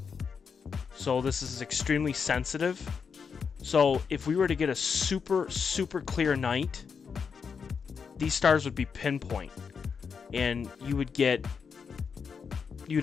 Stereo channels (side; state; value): right; quieter; 6.1 dB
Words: so this is extremely sensitive. So if we were to get a super, super clear night, these stars would be pinpoint, and you'd